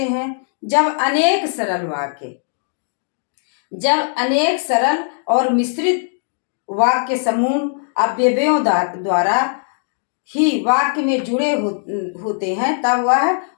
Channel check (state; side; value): silent; right; digital silence